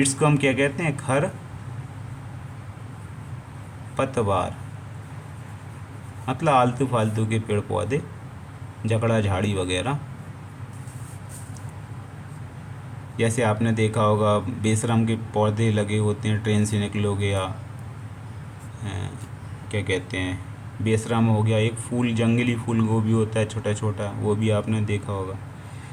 को हम क्या कहते हैं? खर पतवार, मतलब आलतू फालतू के पेड़ पौधे, जकड़ा झाड़ी वगैरह। जैसे आपने देखा होगा बेशरम के पौधे लगे होते हैं, ट्रेन से निकलोगे या क्या कहते हैं, बेशरम हो गया, एक फूल, जंगली फूल गोभी होता है छोटा छोटा, वो भी आपने देखा होगा।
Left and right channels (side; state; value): both; identical; correlation 1.00